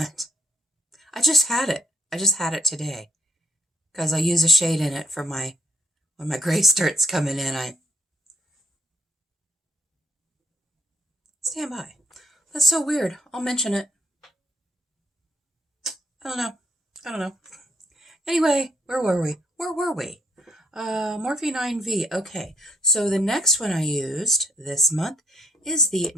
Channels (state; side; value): normal; both; correlation 0.70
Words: I just had it. I just had it today. Because I use a shade in it for when my gray starts coming in. Stand by. That's so weird. I'll mention it. I don't know. Anyway, where were we? Morphe 9V. Okay, so the next one I used this month is the